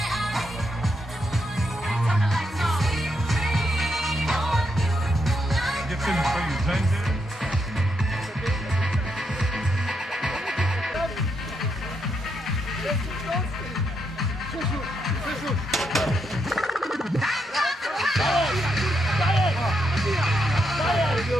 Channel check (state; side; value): normal; both; correlation 0.80